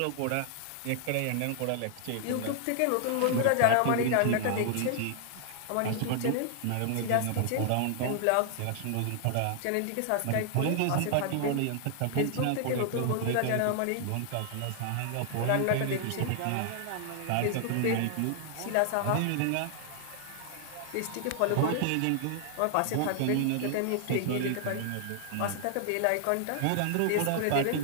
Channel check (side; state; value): both; different; correlation 0.00